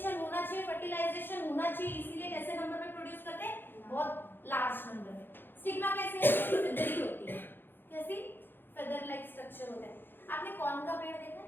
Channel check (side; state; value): right; late; 0.099 ms